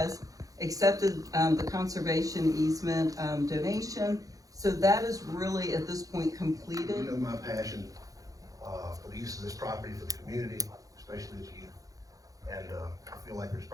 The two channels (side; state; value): left; late; 0.17 ms